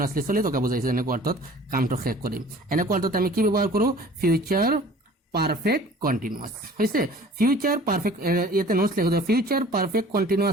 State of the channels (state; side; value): normal; both; correlation 0.47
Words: চলি থকা বুজাইছে এনেকুৱা অৰ্থত কামটো শেষ কৰিম এনেকুৱা অৰ্থত আমি কি ব্যৱহাৰ কৰো ফিউচাৰ পাৰফেক্ট কন্টিনিউয়াস হৈছে ফিউচাৰ পাৰফেক্ট ইয়াতে নোটস লিখো ফিউচাৰ পাৰফেক্ট